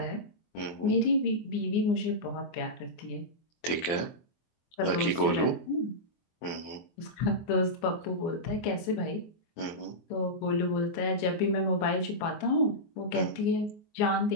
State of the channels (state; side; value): late; right; 24 ms